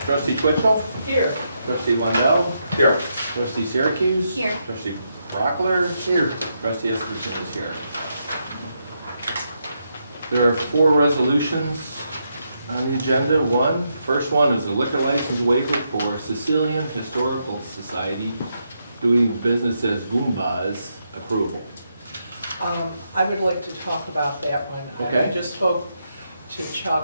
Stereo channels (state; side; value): inverted; both; correlation -0.81